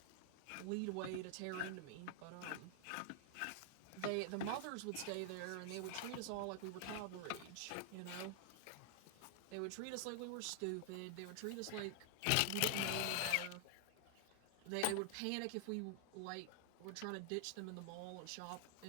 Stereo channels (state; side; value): different; both; correlation 0.00